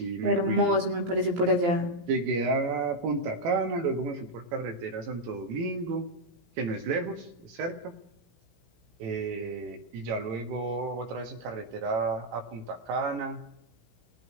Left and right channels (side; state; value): left; late; 17 ms